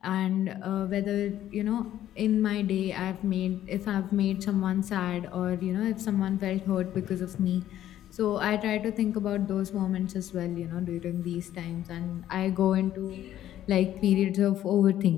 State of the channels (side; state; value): right; quieter; 12.2 dB